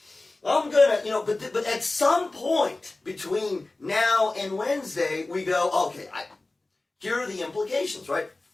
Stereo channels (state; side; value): quieter; right; 3.1 dB